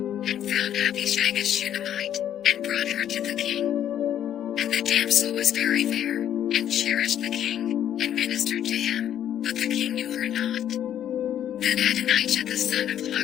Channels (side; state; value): right; quieter; 10.5 dB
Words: and found Abishag a Shunammite, and brought her to the king. And the damsel was very fair, and cherished the king, and ministered to him, but the king knew her not. Then Adonijah the son of